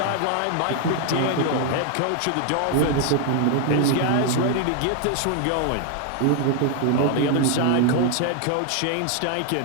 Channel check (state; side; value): different; both; correlation 0.00